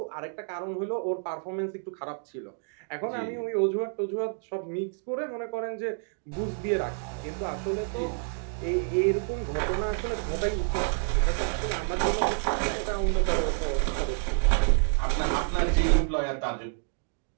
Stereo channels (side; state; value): left; silent; 59 dB below the other